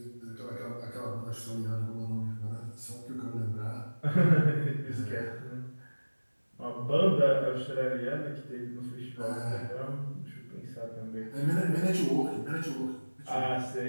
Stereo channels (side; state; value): both; inverted; correlation -1.00